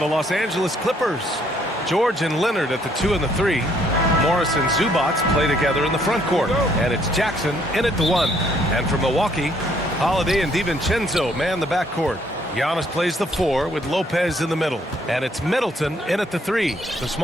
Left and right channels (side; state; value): both; normal; correlation 0.66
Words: Los Angeles Clippers. George and Leonard at the 2 and the 3. Morris and Zubac play together in the front court. And it's Jackson in at the 1. And for Milwaukee, Holiday and DiVincenzo man the backcourt. Giannis plays the 4 with Lopez in the middle. And it's Middleton in at the 3, the